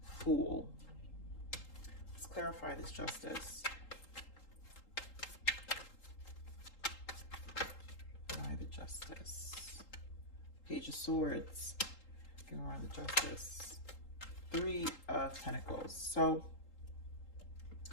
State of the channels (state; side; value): late; right; 3.8 ms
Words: Fool. Let's clarify this Justice. Why the Justice? Page of Swords. Around the Justice. Three of Pentacles. So,